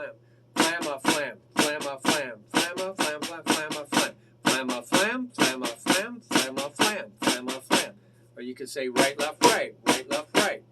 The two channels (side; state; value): both; identical; correlation 1.00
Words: FlamaFlam. FlamaFlam. FlamaFlam. FlamaFlam. FlamaFlam. FlamaFlam. FlamaFlam. FlamaFlam. Or you could say right, left, right. Right, left, right.